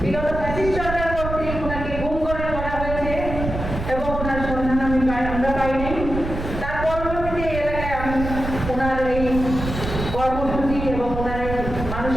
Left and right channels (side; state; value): right; noise; rumble, 6 dB below the sound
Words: বিগত ফ্যাসিস্ট সরকার কর্তৃক ওনাকে গুম করে ধরা হয়েছে এবং ওনার সন্ধান আমরা পাইনি, তার পরবর্তীতে এই এলাকায় আমি ওনার এই কর্মসূচি এবং ওনার এই